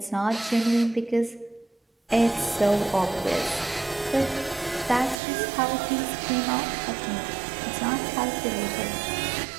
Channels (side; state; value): left; drops out; at 5.2 s